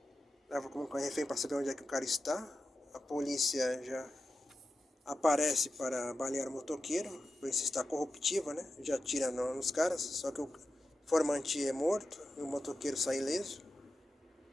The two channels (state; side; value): normal; both; correlation 0.91